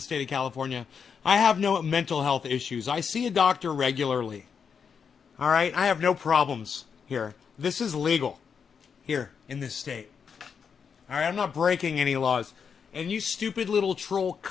of California. I have no mental health issues. I see a doctor regularly. All right? I have no problems here. This is legal here in this state. All right? I'm not breaking any laws. And you stupid little troll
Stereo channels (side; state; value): right; quieter; 6.5 dB